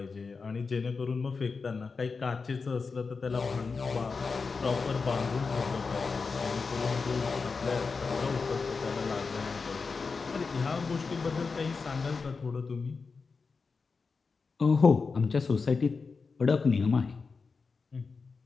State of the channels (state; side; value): quieter; right; 4.7 dB